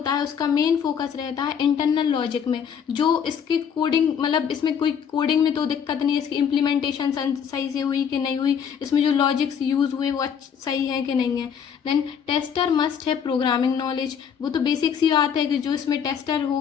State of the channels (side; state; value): right; quieter; 7.6 dB